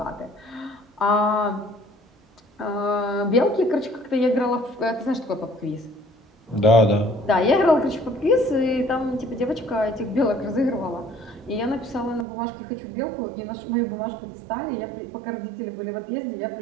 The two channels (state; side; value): drops out; left; at 12.2 s